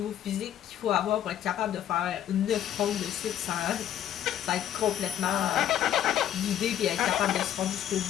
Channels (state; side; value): quieter; right; 10.9 dB